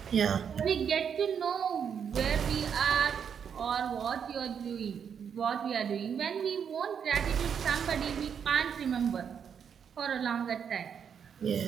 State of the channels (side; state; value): left; quieter; 7.5 dB